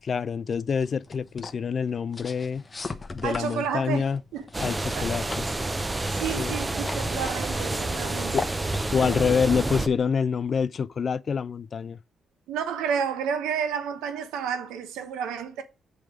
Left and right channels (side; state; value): both; normal; correlation 0.77